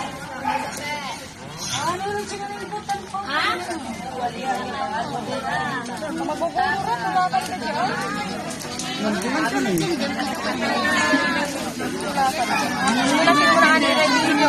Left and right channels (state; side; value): identical; both; correlation 1.00